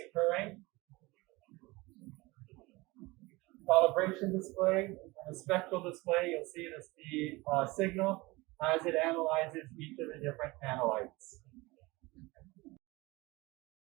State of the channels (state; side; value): quieter; left; 22.5 dB